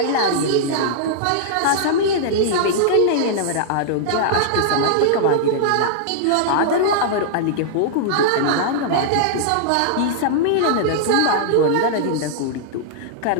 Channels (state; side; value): different; both; correlation -0.01